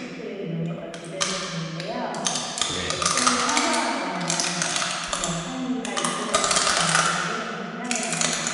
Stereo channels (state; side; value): identical; both; correlation 1.00